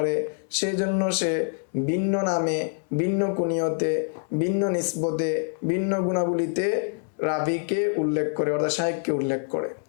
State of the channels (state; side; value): silent; right; 61 dB below the other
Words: সেই জন্য সে ভিন্ন নামে, ভিন্ন কুনিয়তে, ভিন্ন নিসবতে, ভিন্ন গুণাবলীতে রাবিকে উল্লেখ করে, অর্থাৎ শাইখকে উল্লেখ করে।